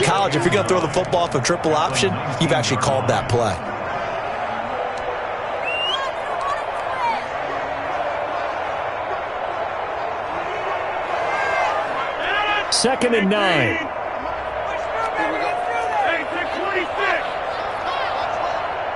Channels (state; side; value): identical; both; correlation 1.00